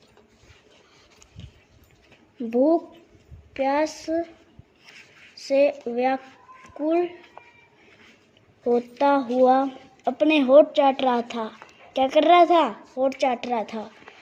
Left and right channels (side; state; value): both; identical; correlation 1.00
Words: भूख प्यास से व्याकुल होता हुआ अपने होठ चाट रहा था। क्या कर रहा था? होठ चाट रहा था।